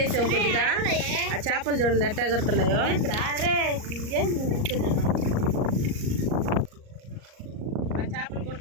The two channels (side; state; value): left; late; 38 ms